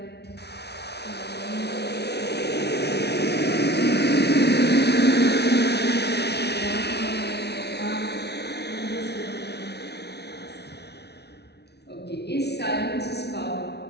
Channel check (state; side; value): late; right; 0.49 ms